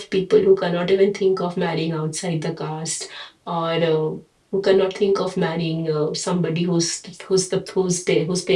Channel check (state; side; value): identical; both; correlation 1.00